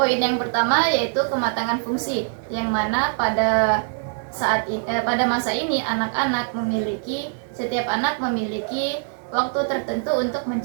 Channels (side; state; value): left; silent; digital silence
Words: yang pertama yaitu kematangan fungsi, yang mana pada masa ini setiap anak memiliki waktu tertentu untuk